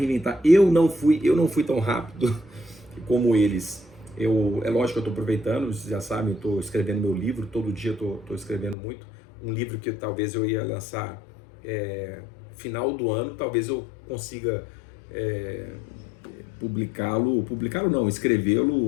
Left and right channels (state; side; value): drops out; right; at 8.8 s